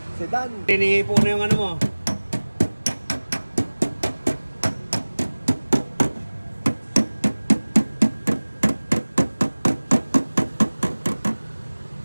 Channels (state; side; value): inverted; both; correlation -1.00